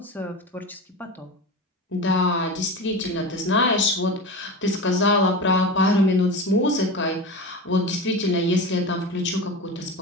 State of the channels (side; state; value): both; normal; correlation 0.27